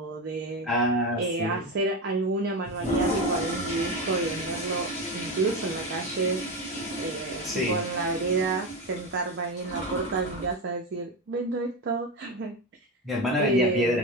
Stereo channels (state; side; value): normal; both; correlation 0.17